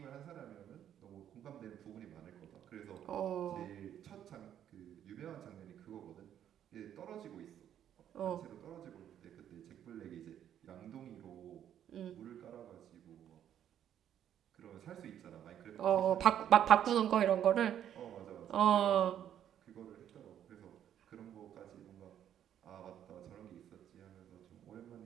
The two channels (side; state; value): left; quieter; 10.2 dB